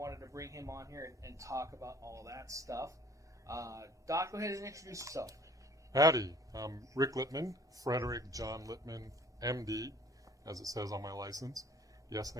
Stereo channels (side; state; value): both; normal; correlation 0.53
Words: to bring him on here and talk about all that stuff. Doc, go ahead and introduce yourself. Howdy, I'm Rick Littman, Frederick John Littman, MD, as it says on my license. Yes,